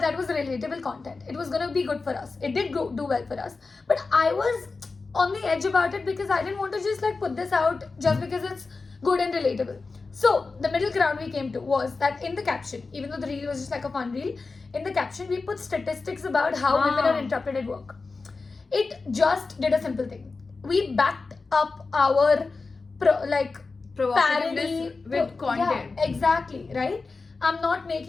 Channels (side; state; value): right; quieter; 4.0 dB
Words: that was relatable content. It was going to be good for us. It did do well for us. But I was on the edge about it because I didn't want to just like put this out just because it's good and relatable. So the middle ground we came to was that in the caption, even though the reel was just like a fun reel, in the caption we put statistics about how women are interrupted at work. It just did a simple thing. We backed up our parody with content. Yeah, exactly, right? I'm not